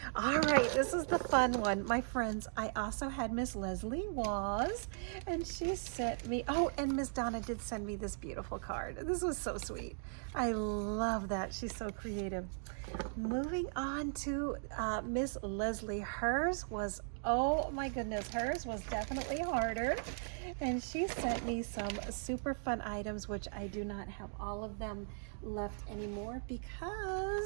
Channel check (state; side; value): silent; left; digital silence